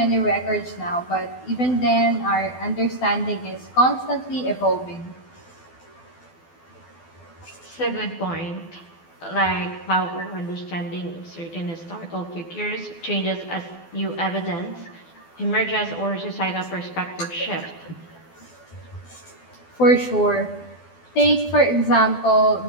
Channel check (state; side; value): late; right; 12 ms